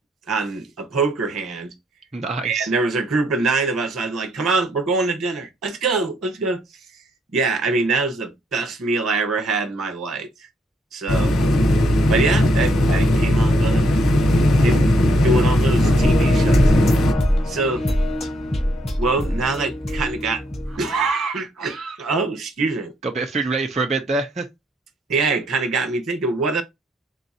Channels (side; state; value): both; normal; correlation 0.73